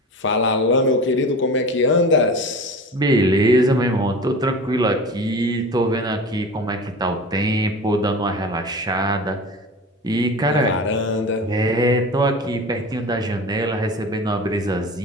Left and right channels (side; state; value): both; normal; correlation 0.34